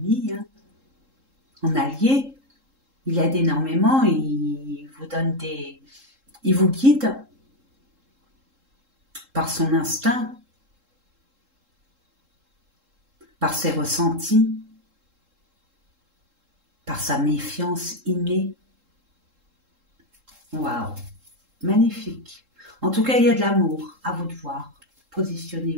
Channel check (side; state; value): left; late; 3.7 ms